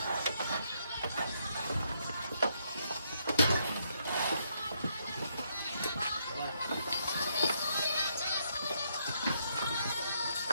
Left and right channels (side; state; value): both; inverted; correlation -0.75